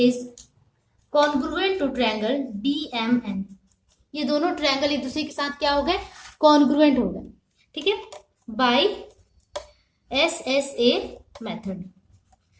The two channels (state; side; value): identical; both; correlation 1.00